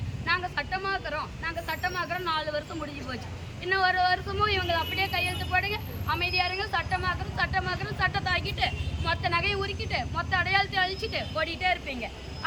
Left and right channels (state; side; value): identical; both; correlation 1.00